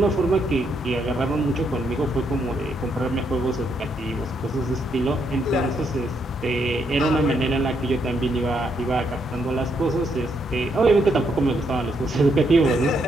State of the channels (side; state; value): both; normal; correlation 0.76